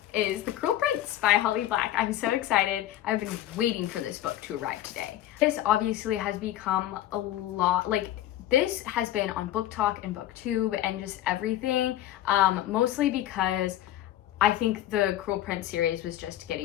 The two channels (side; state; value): right; quieter; 13.3 dB